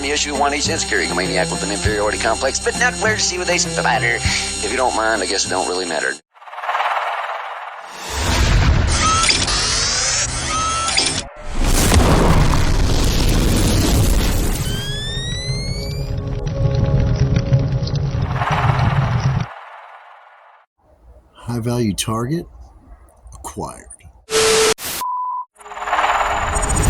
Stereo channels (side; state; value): both; identical; correlation 1.00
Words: Issue 1H, insecurity maniac with an inferiority complex, but not where to see what they spatter. If you don't mind, I guess it don't really matter. High-value target acquired.